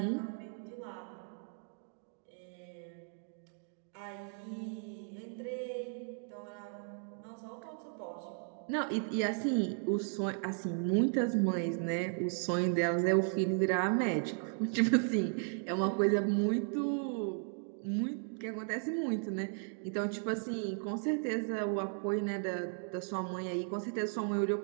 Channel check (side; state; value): left; silent; 54 dB below the other